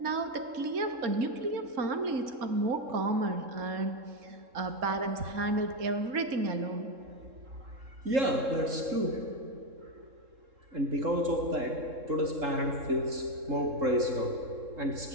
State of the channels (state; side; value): late; left; 3.7 ms